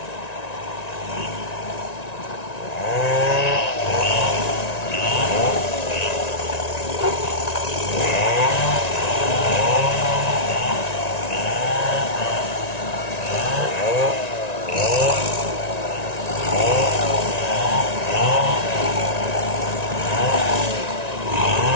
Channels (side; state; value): right; late; 1.9 ms